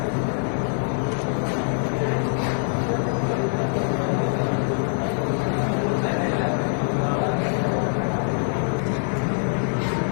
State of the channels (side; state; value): right; silent; 63 dB below the other